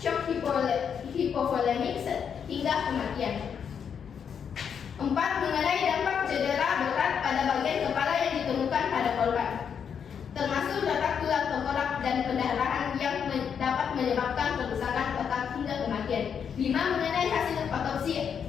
hipovolemik hingga kematian. 4. Mengenai dampak cedera berat pada bagian kepala yang ditemukan pada korban, termasuk retak tulang tengkorak dan pendarahan yang dapat menyebabkan kerusakan otak hingga kematian. 5. Mengenai hasil otopsi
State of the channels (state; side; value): quieter; right; 7.4 dB